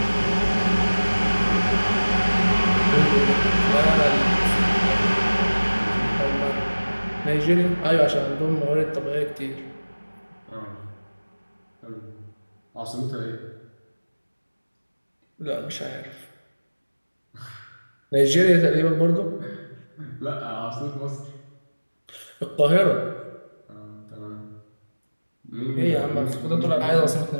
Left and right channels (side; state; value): both; inverted; correlation -1.00